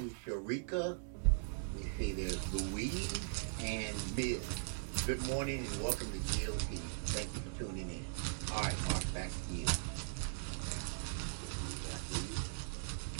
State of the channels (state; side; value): silent; left; digital silence